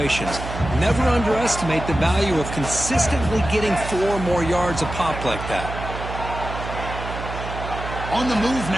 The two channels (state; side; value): noise; right; hum, 8 dB below the sound